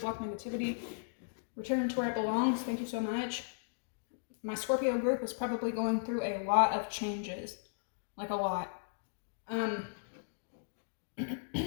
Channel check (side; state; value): right; silent; digital silence